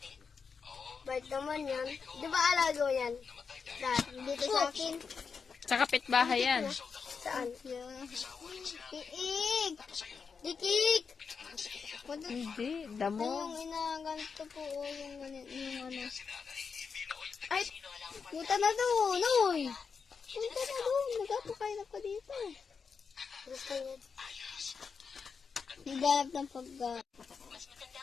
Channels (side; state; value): right; quieter; 5.7 dB